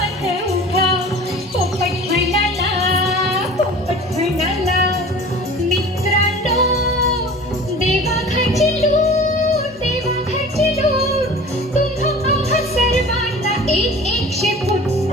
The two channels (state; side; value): normal; both; correlation 0.41